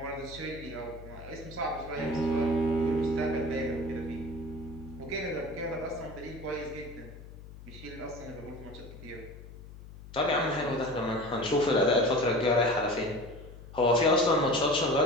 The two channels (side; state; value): left; noise; hum, 16 dB below the sound